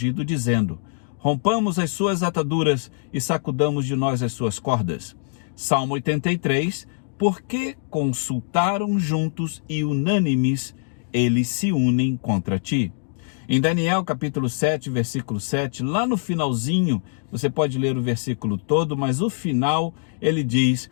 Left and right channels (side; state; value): right; silent; digital silence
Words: dizendo: Rompamos as suas ataduras e sacudamos de nós as suas cordas. Salmo 83. Porque consultaram juntos e unânimes, eles se unem contra ti. Em Daniel capítulo 7, versículo 7, lá no finalzinho, você pode ler o versículo todo, mas o final ele diz